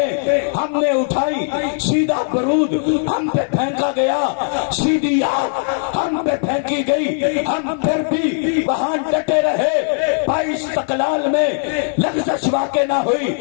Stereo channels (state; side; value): silent; right; digital silence